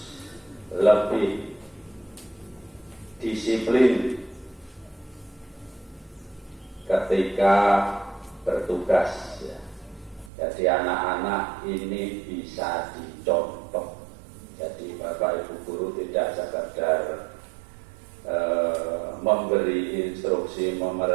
lebih disiplin ketika bertugas. Jadi anak-anak ini bisa dicontoh. Jadi Bapak Ibu guru tidak sekedar memberi instruksi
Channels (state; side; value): drops out; left; at 10.3 s